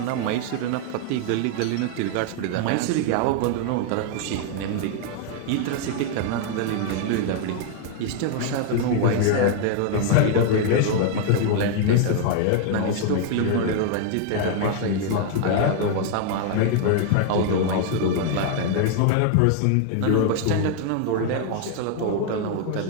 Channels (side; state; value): both; different; correlation 0.00